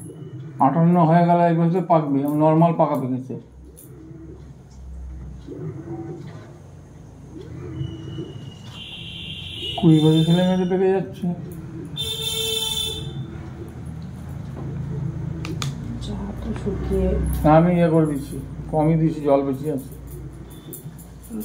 58 হয়ে গেলে এই বলছে পাকবে, নর্মাল পাকা পেকেছে। কুড়ি বছর ছেলে মেয়েদের পেকে যাচ্ছে। শুকিয়ে আমি ইয়ে করে দিচ্ছি, কমই দিচ্ছি, জল বেশি আছে।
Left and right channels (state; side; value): identical; both; correlation 1.00